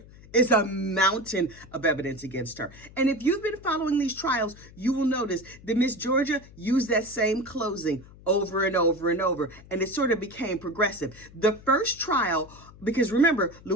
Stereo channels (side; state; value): left; noise; hum, 21 dB below the sound